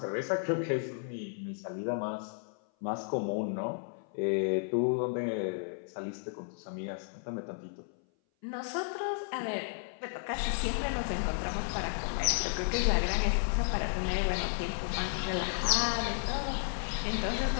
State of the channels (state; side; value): silent; right; 56 dB below the other